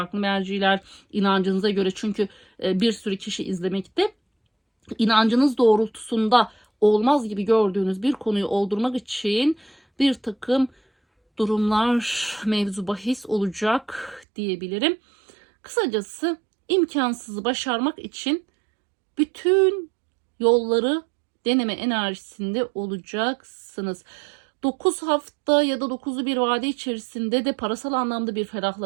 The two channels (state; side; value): drops out; left; at 14.2 s